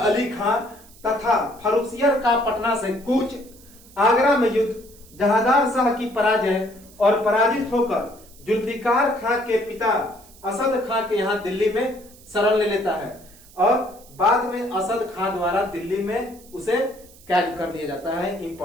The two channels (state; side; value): noise; right; hiss, 24 dB below the sound